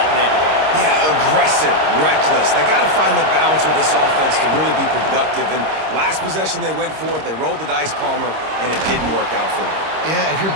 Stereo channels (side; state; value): left; late; 26 ms